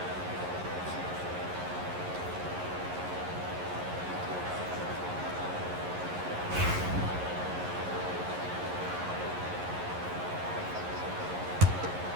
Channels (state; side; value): late; left; 11 ms